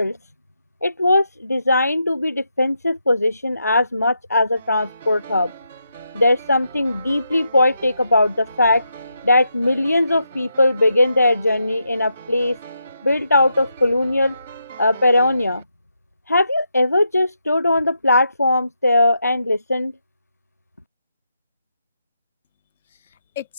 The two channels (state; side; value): inverted; both; correlation -0.83